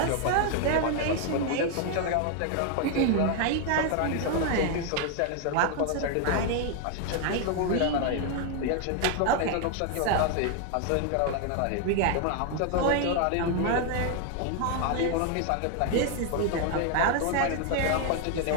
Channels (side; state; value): both; different; correlation 0.00